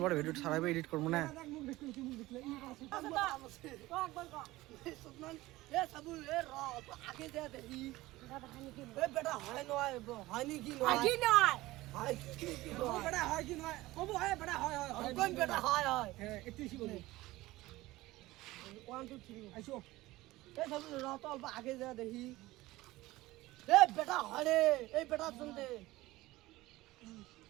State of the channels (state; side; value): quieter; left; 18.4 dB